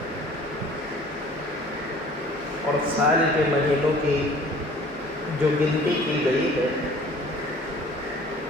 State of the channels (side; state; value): both; normal; correlation 0.50